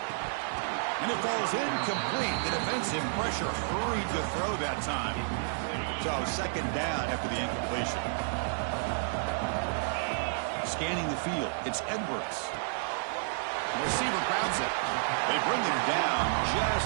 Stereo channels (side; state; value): left; silent; digital silence